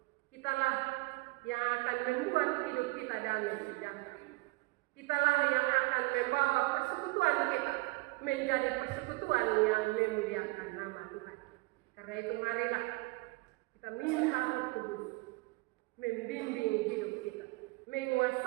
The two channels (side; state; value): left; quieter; 24.5 dB